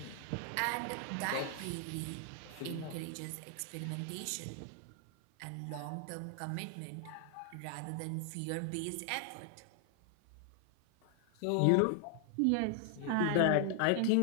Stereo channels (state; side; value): different; both; correlation 0.00